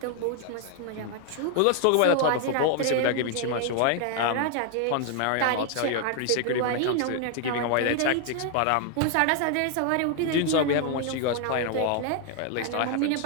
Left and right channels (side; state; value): both; different; correlation 0.00